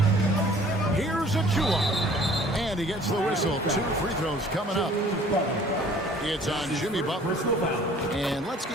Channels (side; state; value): both; normal; correlation 0.52